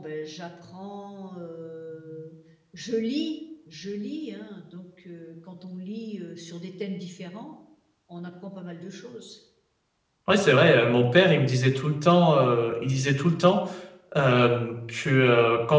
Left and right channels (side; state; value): both; identical; correlation 1.00